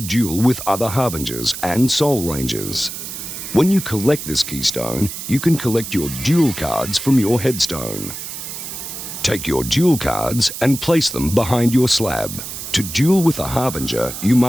with other Harbingers and Soul Rangers. When you collect this keystone, you can collect your duel cards from your headstone. Take your duel cards and place them behind your slab. To duel with a Harbinger, you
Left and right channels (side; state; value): right; noise; hiss, 8 dB below the sound